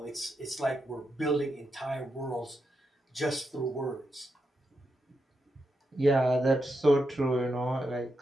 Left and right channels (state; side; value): normal; both; correlation 0.85